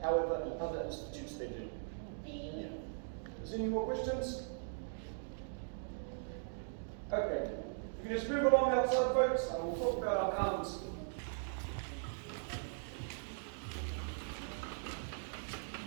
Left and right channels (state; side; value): silent; left; digital silence